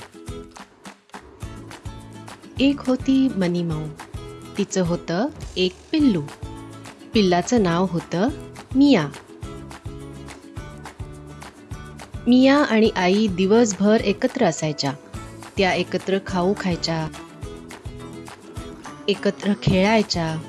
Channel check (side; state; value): both; identical; correlation 1.00